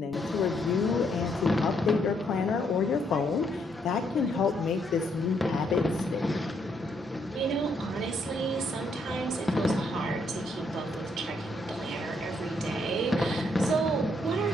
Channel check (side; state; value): both; normal; correlation 0.73